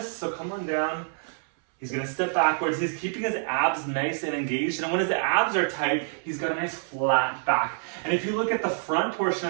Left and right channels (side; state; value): left; silent; 60 dB below the other